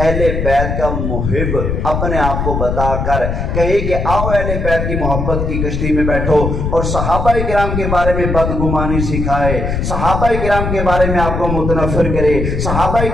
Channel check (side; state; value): left; noise; rumble, 2 dB below the sound